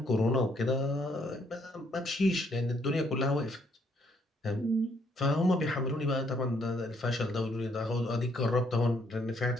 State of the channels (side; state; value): both; normal; correlation 0.69